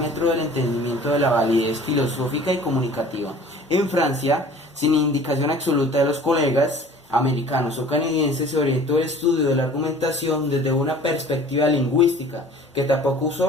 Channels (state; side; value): normal; both; correlation 0.47